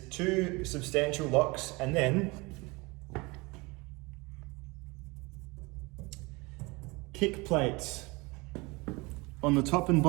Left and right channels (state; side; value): quieter; left; 25.2 dB